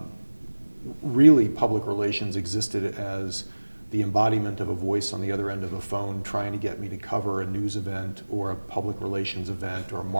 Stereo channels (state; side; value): inverted; both; correlation -1.00